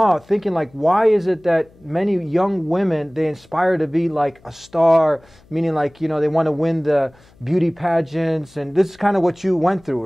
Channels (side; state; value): left; noise; hum, 29 dB below the sound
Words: thinking like, why is it that many young women, they inspire to be like a star, meaning like, they want to win the beauty pageants, and this is kind of what you went through,